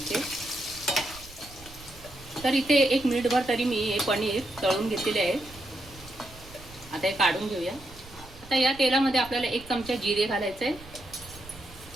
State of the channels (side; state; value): right; noise; rumble, 19 dB below the sound